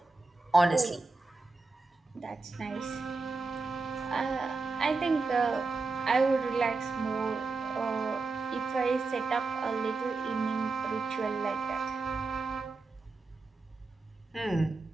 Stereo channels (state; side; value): quieter; left; 3.8 dB